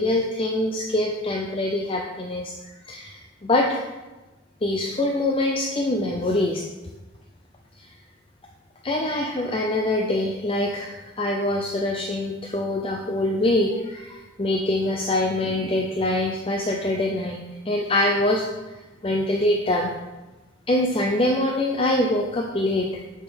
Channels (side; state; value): both; normal; correlation 0.38